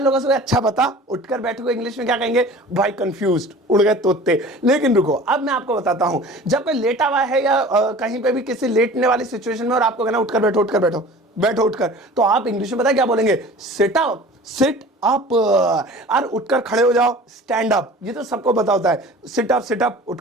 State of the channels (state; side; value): normal; both; correlation 0.42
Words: लोगों से अच्छा बता, उठकर बैठो को इंग्लिश में क्या कहेंगे भाई, कंफ्यूज्ड, उड़ गए तोते। लेकिन रुको, अब मैं आपको बताता हूं, जब कोई लेटा हुआ है या कहीं पे भी किसी लेटने वाली सिचुएशन में और आपको कहना उठकर बैठो, उठकर बैठो, बैठो उठकर, तो आप इंग्लिश में पता क्या बोलेंगे, सिट अप, सिट अप। और उठकर खड़े हो जाओ, स्टैंड अप, ये तो सबको पता होता है, सिट अप,